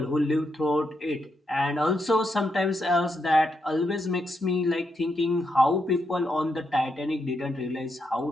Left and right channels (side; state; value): both; normal; correlation 0.82